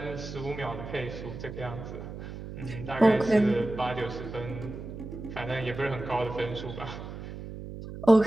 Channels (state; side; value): noise; right; hum, 10 dB below the sound